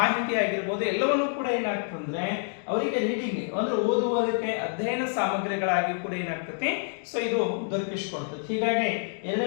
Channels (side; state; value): right; silent; 60 dB below the other